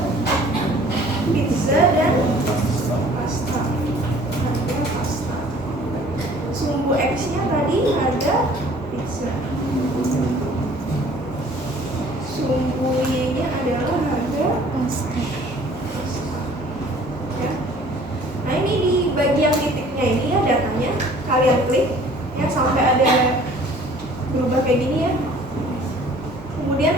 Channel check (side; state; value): both; normal; correlation 0.52